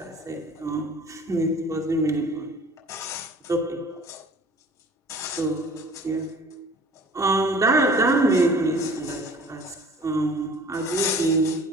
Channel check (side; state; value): both; normal; correlation 0.47